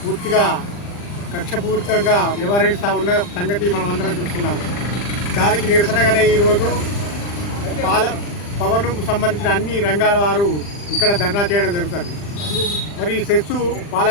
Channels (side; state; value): right; late; 40 ms